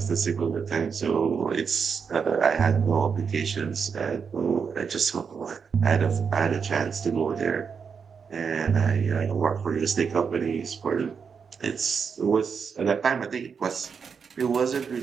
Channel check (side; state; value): left; quieter; 6.1 dB